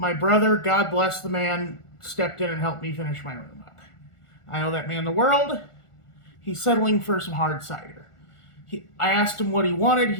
brother, God bless the man, stepped in and helped me finish my room up. I owe that man the world. He's settling for some hard cider. I asked him what he wanted.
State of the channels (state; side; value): late; right; 1.4 ms